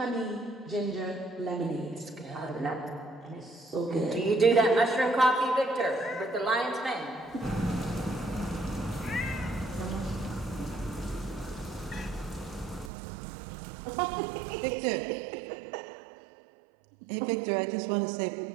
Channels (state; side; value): drops out; left; at 12.9 s